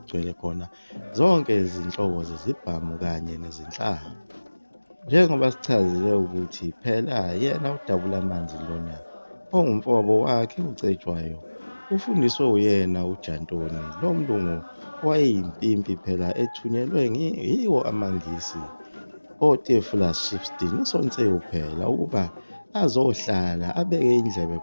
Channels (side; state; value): both; inverted; correlation -1.00